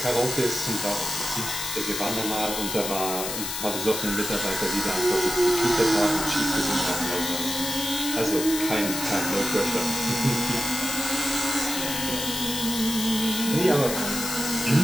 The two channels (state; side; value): noise; left; hiss, 4 dB below the sound